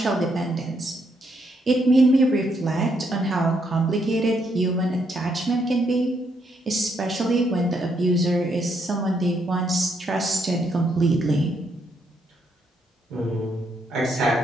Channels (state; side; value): normal; both; correlation 0.75